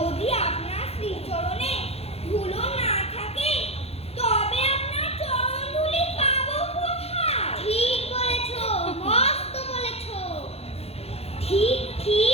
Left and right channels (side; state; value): right; late; 0.29 ms